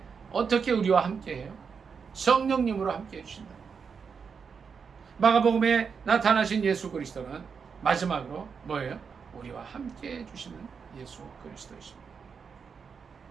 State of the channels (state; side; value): quieter; left; 6.0 dB